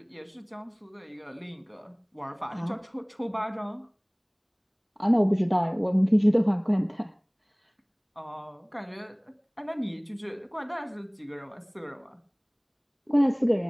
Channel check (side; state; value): both; identical; correlation 1.00